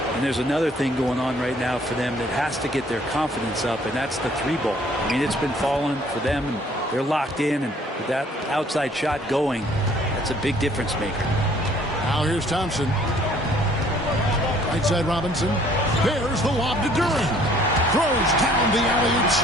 And there's another thing going on right now for them that has to get their confidence up, and that's the three ball. I mean, it's been falling for them, and they're locked in, and with that outside shot going, that's a big difference maker. Now here's Thompson. Right side Robinson. There's the lob to Duran. Throws down the alley-oop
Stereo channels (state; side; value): normal; both; correlation 0.59